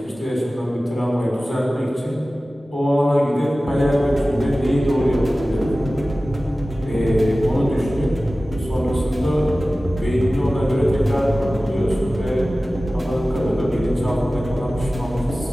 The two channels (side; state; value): both; normal; correlation 0.96